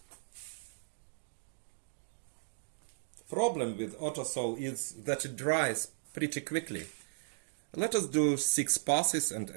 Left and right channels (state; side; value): silent; left; digital silence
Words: The problem with auto saw is that it dries pretty quickly. Let us do 6 passes and